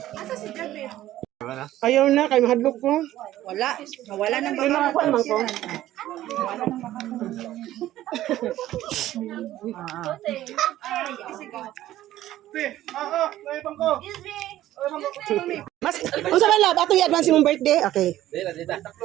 Ayaw na, kay mahadlok ko. Wala. Nawala nang Ay, nakakuha naman ko. Mas, unsa man lab, ato i-advance mong birthday? Okay.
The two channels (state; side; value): quieter; left; 14.0 dB